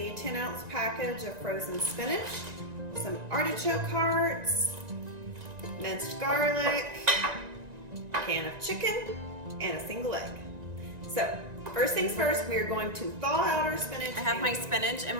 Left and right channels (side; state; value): left; late; 1.9 ms